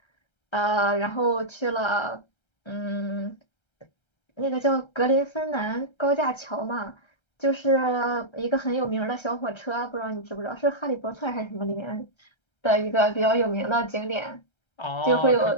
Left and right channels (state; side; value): late; right; 1.3 ms